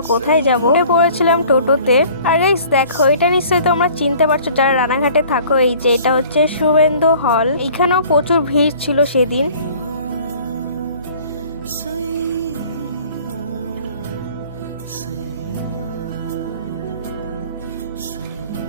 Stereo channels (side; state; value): both; inverted; correlation -0.50